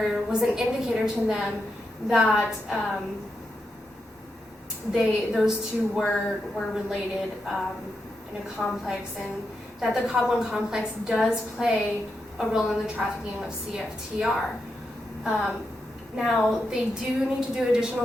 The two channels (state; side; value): normal; both; correlation 0.85